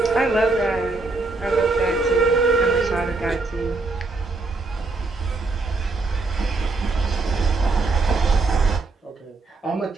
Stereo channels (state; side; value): quieter; left; 3.6 dB